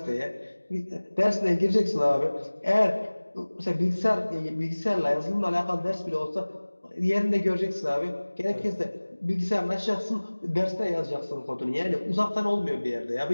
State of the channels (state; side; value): inverted; both; correlation -1.00